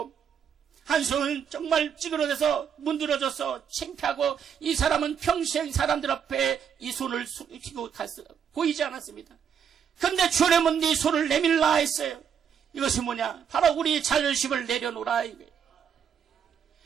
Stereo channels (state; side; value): quieter; left; 7.8 dB